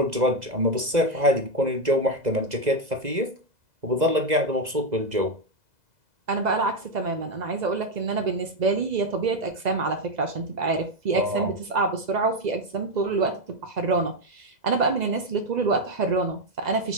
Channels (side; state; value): left; late; 2.0 ms